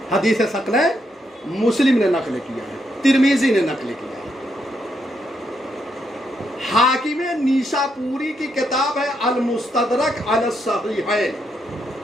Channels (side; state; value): both; normal; correlation 0.79